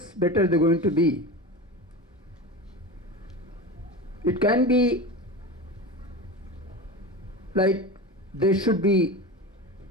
better they're going to be. It can be like they should be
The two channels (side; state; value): both; normal; correlation 0.27